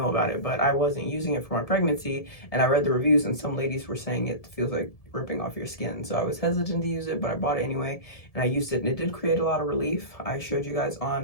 about it, but I wasn't using it for my pregnancy, and I read the reviews, and some ladies were saying it feels like ripping off your skin. So I was hesitant to use it, but I bought it anyway, and I used it, and it did create a lot of relief. I showed you guys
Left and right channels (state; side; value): late; right; 1.7 ms